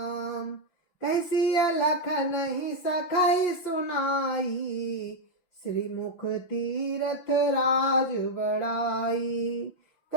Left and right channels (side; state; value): right; late; 6.0 ms